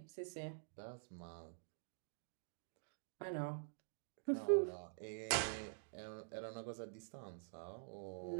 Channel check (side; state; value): left; silent; digital silence